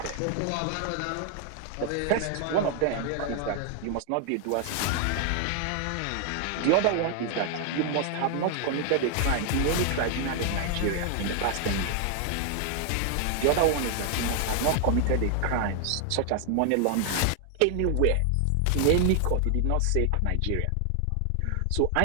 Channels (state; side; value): different; both; correlation 0.00